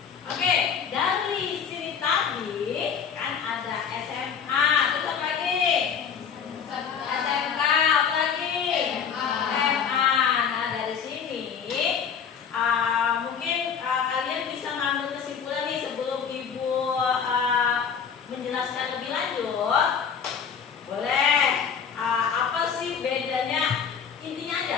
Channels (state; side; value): quieter; right; 7.1 dB